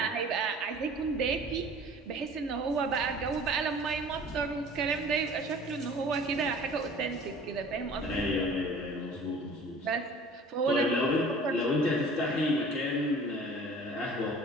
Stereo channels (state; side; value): normal; both; correlation 0.47